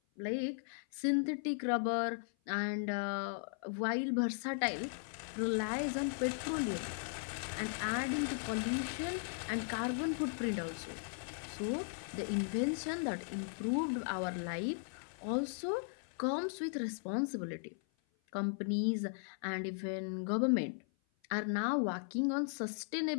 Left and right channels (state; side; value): silent; right; 53 dB below the other